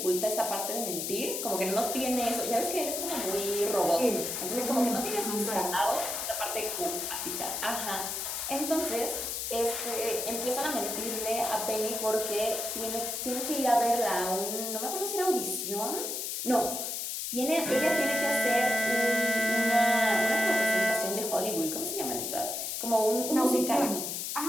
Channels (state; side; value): noise; left; hiss, 3 dB below the sound